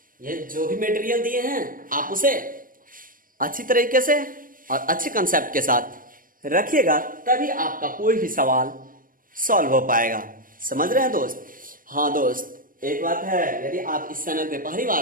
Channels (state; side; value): late; left; 0.40 ms